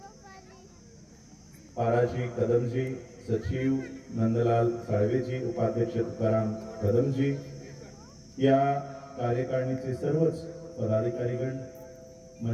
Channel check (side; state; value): both; identical; correlation 1.00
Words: पाराजी कदमजी, सचिव नंदलाल साळवेजी, उपाध्यक्ष तुकाराम कदमजी, या कार्यकारिणीचे सर्वच पदाधिकारीगण,